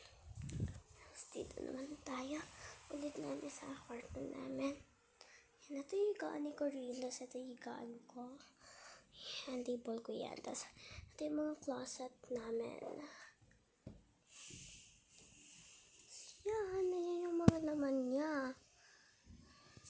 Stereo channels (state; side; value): identical; both; correlation 1.00